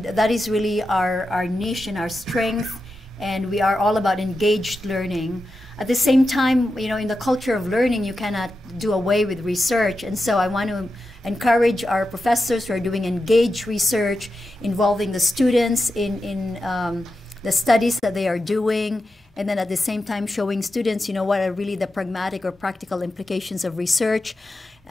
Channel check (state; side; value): normal; both; correlation 0.90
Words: that is really our niche and our strength, and we are all about engaged learning. At the same time, in the culture of learning, you cannot do away with research, and so I want to encourage our professors who are doing engaged research, involving the students in the studies that they are doing, and then at the same time showing students, what are really the pragmatic or practical implications of research.